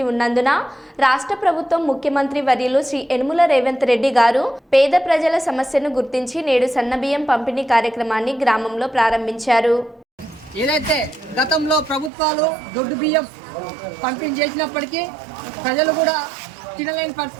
ఉన్నందున రాష్ట్ర ప్రభుత్వం ముఖ్యమంత్రి వర్యులు శ్రీ యనుమల రేవంత్ రెడ్డి గారు పేద ప్రజల సమస్యను గుర్తించి నేడు సన్నబియ్యం పంపిణీ కార్యక్రమాన్ని గ్రామంలో ప్రారంభించారు. ఏదైతే గతంలో ప్రభుత్వాలు దొడ్డు బియ్యం పంపిణీ చేసినప్పటికీ ప్రజలు కూడా తినలేని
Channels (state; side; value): drops out; left; at 12.1 s